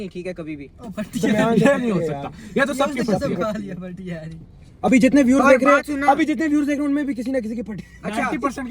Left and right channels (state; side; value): identical; both; correlation 1.00